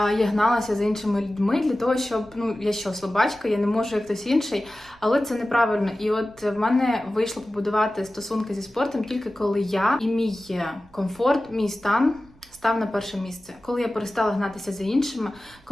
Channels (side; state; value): right; noise; rumble, 27 dB below the sound